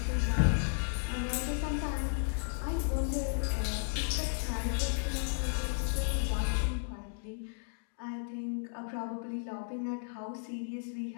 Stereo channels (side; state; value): right; silent; digital silence